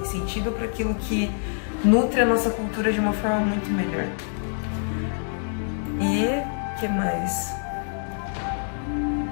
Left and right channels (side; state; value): right; silent; digital silence